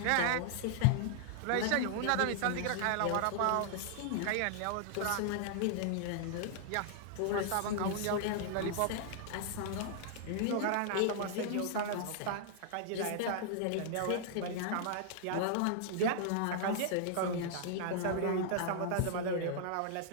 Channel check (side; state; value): both; different; correlation -0.01